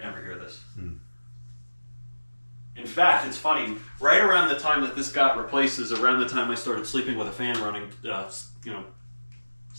never hear this. In fact, it's funny. Right around the time that this got replaced is around the time I started sleeping with a fan running,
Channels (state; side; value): inverted; both; correlation -1.00